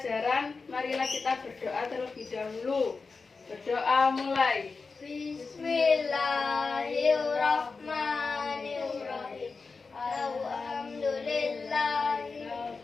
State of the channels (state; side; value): quieter; right; 4.4 dB